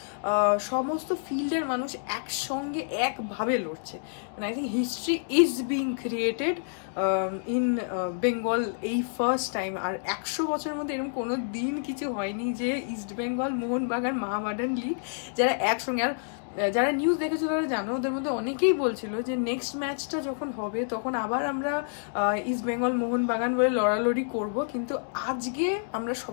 সমস্ত ফিল্ডের মানুষ একসঙ্গে একভাবে লড়ছে। মানে I think history is being created in Bengal এই ফার্স্ট টাইম। আর 100 বছরের মধ্যে এরকম কোনো দিন কিছু হয়নি যে ইস্ট বেঙ্গল, মোহনবাগান, মোহামেডান লীগ যারা একসঙ্গে। আর যারা নিউজ দেখেছো তারা জানো, ওদের মধ্যে অনেকেই বলছিল যে নেক্সট ম্যাচটা যখন হবে তখন আবার আমরা ইস্ট বেঙ্গল, মোহনবাগান বলে লড়ালড়ি করব, কিন্তু আজকে আমরা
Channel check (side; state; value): right; silent; digital silence